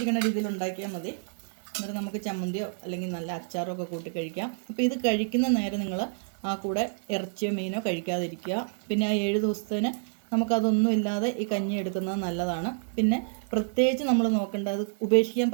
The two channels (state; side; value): silent; left; digital silence